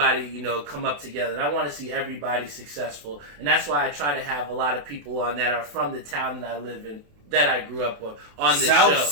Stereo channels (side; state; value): left; late; 28 ms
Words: come up together. And I want to see everybody successful. And that's why I try to have a lot of people on that are from the town that I live in, that I grew up on this show. South